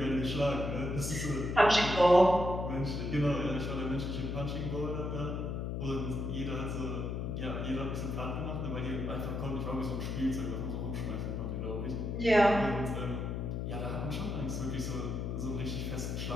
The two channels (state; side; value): noise; left; hum, 3 dB below the sound